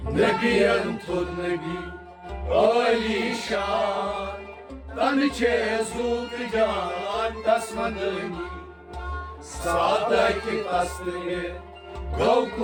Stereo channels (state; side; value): identical; both; correlation 1.00